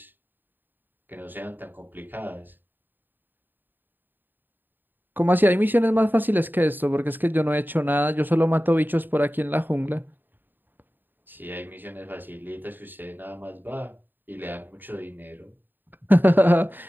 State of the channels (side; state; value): left; late; 0.092 ms